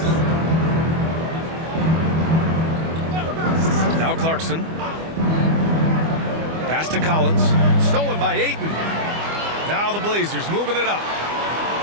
Now Clarkson. Pass to Collins. Stolen by Ayton. Now the Blazers moving it up.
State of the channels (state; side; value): late; left; 25 ms